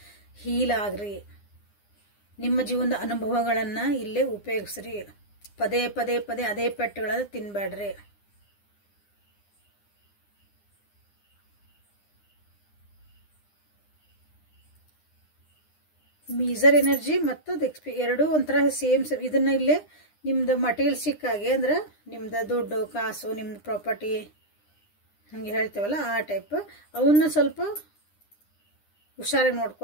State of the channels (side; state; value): right; late; 9.8 ms